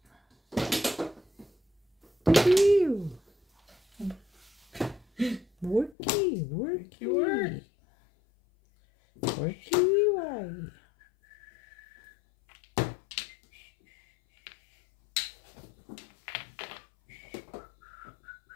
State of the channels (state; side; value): drops out; right; at 6.0 s